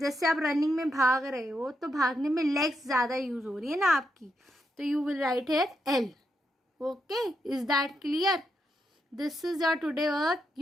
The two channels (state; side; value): normal; both; correlation 0.82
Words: आप रनिंग में भाग रहे हो तो भागने में legs ज़्यादा यूज हो रही है ना आपकी, तो you will write here L. Okay, is that clear? This is your today work.